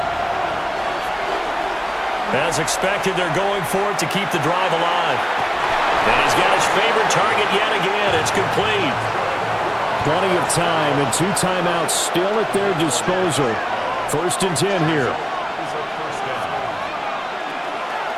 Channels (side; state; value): both; identical; correlation 1.00